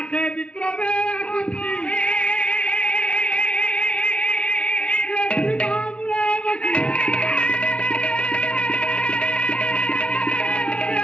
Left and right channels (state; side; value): late; right; 0.059 ms